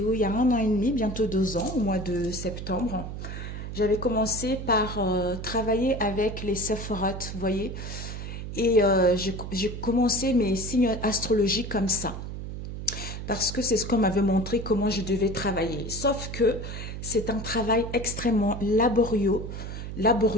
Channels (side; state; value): right; noise; hum, 7 dB below the sound